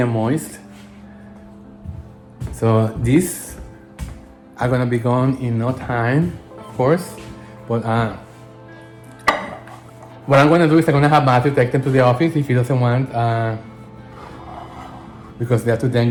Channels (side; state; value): both; identical; correlation 1.00